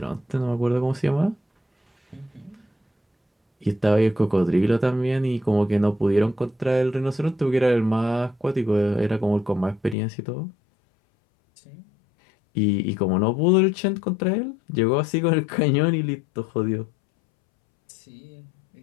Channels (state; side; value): drops out; right; at 10.0 s